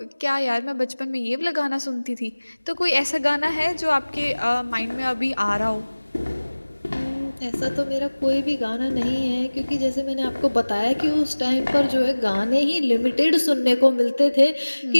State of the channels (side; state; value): both; inverted; correlation -1.00